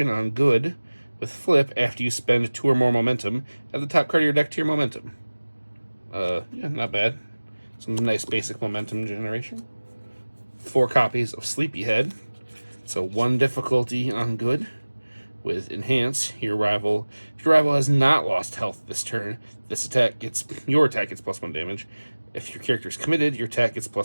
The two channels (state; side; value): inverted; both; correlation -1.00